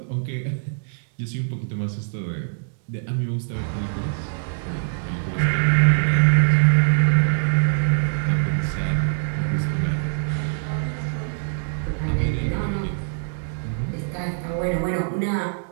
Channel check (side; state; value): left; silent; digital silence